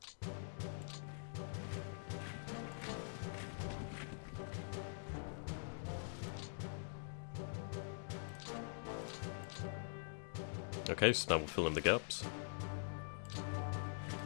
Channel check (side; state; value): right; silent; digital silence